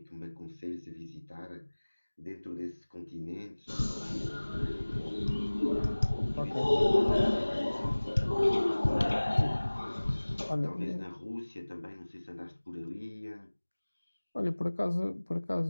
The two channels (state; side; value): inverted; both; correlation -1.00